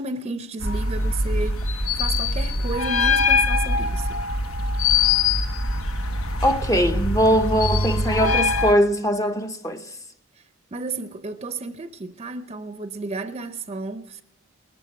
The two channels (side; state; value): both; normal; correlation 0.50